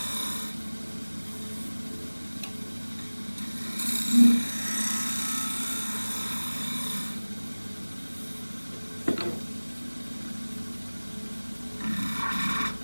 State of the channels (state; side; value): inverted; both; correlation -1.00